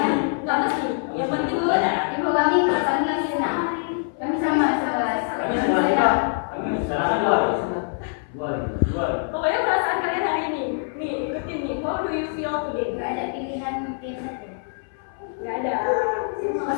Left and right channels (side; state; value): right; silent; 61 dB below the other